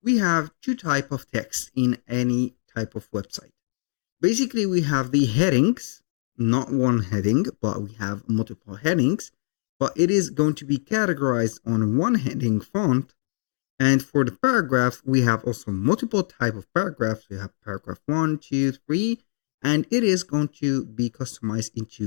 We have two type of text in any type of website. Basically, we have the headings, not one heading, but we have multiple headings, but it is going to be categorized on one heading font. And for the paragraph, we have also multiple type of paragraphs. We have paragraph 1, 2, 3, and it is going to be customized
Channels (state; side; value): silent; right; digital silence